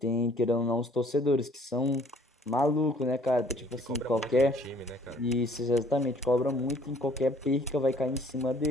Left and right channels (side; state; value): both; normal; correlation 0.58